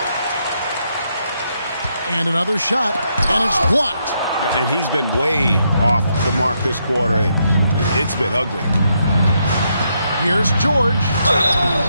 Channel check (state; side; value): inverted; both; correlation -0.78